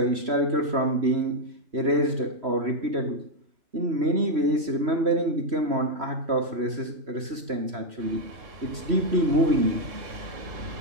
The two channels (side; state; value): left; late; 3.1 ms